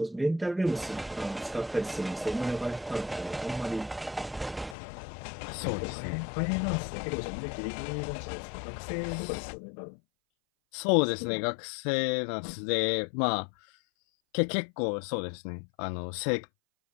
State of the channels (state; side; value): drops out; right; at 4.8 s